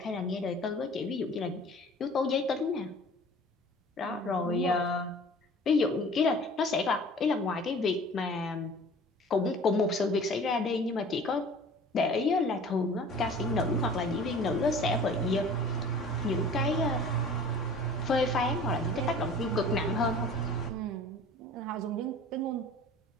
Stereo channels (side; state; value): both; normal; correlation 0.45